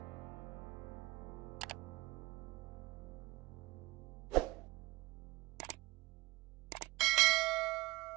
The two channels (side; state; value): left; quieter; 21.7 dB